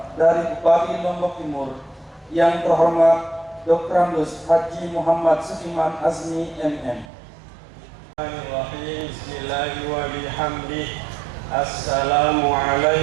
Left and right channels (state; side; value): drops out; left; at 7.1 s